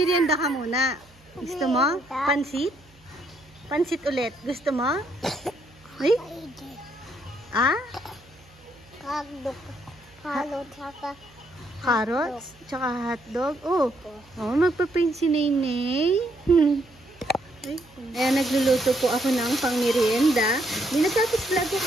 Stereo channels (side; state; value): right; noise; hum, 29 dB below the sound